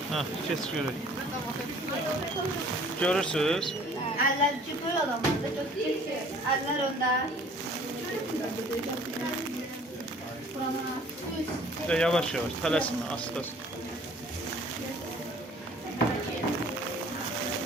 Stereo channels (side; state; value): both; normal; correlation 0.53